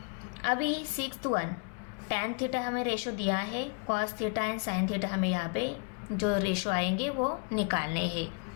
अभी 6th वन, टैन थीटा हमें रेशो दिया है, cos theta and sine theta हमें यहाँ पे जो रेशो आएंगे वो निकालने हैं।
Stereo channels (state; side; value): quieter; right; 36.3 dB